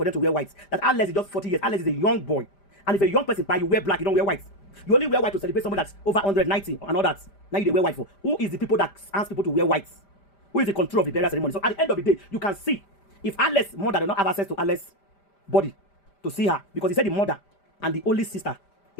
them to wear white. That Alex is just 40 years. Alex is a young boy. And if a young person buy, you wear black, you don't wear white. You only wear white to celebrate somebody that's over 190 and all that. Now you wear white for. Who is the people that ask people to wear white? Who is the control of the burial ceremony? So at the end of the day, you can see if Alex's mother does not have access to Alex's body to see her, because he said the mother and the only sister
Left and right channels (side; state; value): right; late; 5.0 ms